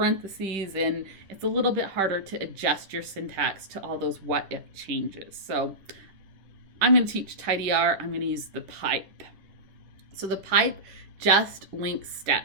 and it's a little bit harder to adjust your syntax to all those what if changes. So I'm going to teach tidyr. I'm going to use the pipe. So the pipe just links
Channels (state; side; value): late; left; 10 ms